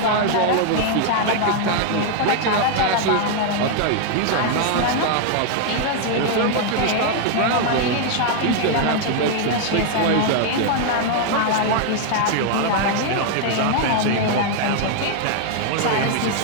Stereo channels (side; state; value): both; different; correlation 0.00